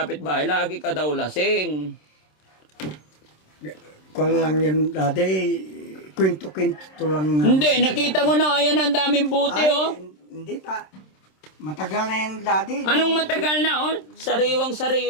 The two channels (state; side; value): late; right; 27 ms